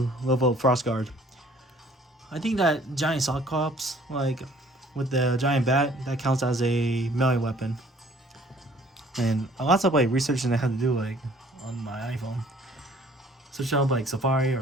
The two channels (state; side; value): normal; both; correlation 0.56